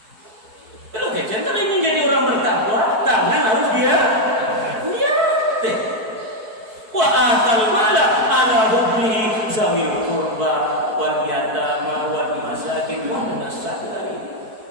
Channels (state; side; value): late; left; 4.6 ms